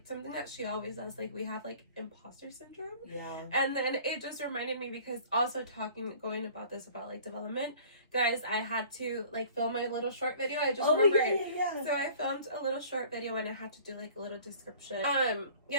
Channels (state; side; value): inverted; both; correlation -0.49